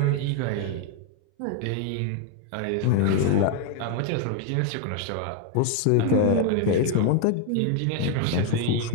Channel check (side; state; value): both; different; correlation 0.01